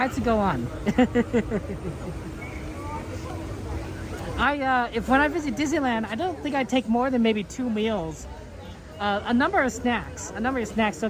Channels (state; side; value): identical; both; correlation 1.00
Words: to go on. When I visit Disneyland, I don't think I'd take more than maybe 2 meals. A number of snacks,